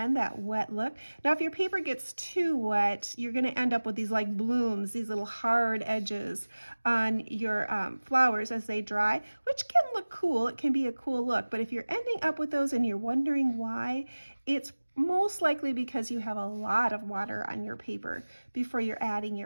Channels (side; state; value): both; inverted; correlation -1.00